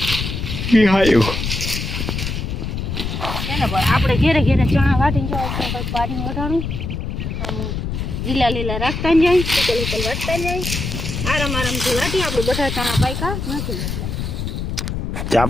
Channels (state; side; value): noise; left; rumble, 3 dB below the sound